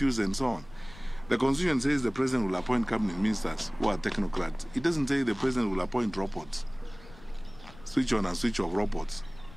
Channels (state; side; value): noise; left; rumble, 20 dB below the sound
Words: and so on. The Constitution says the President will appoint cabinet ministers who are technocrats. It doesn't say the President will appoint robots, switch on and switch off robots